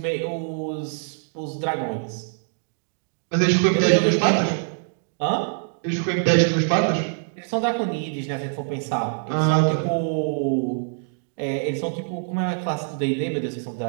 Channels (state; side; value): silent; left; digital silence